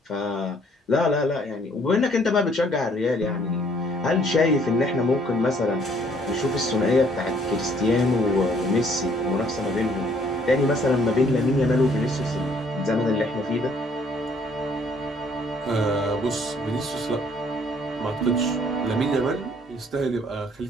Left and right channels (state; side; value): normal; both; correlation 0.62